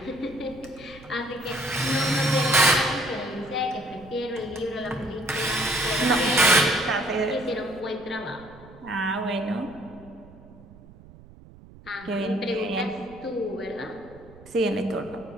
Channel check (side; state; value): right; noise; rumble, 21 dB below the sound